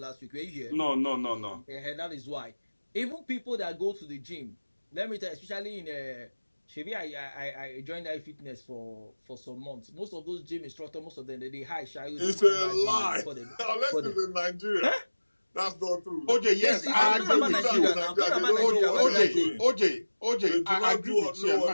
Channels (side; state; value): both; inverted; correlation -1.00